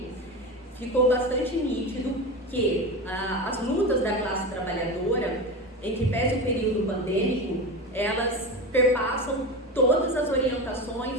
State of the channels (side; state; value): both; normal; correlation 0.24